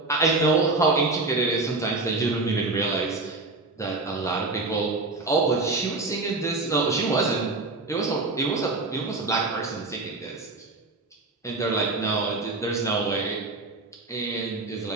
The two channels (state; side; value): quieter; left; 3.3 dB